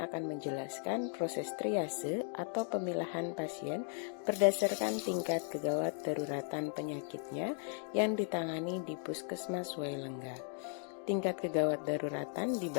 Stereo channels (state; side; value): silent; right; 53 dB below the other